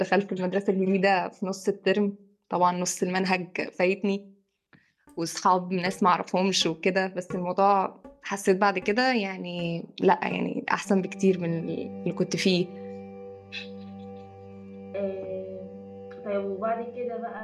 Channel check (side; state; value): both; identical; correlation 1.00